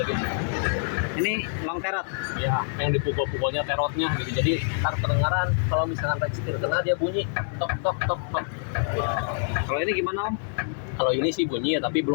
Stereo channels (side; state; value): right; silent; digital silence